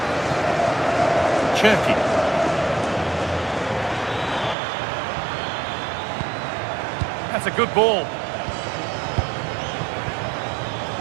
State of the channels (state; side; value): drops out; left; at 4.5 s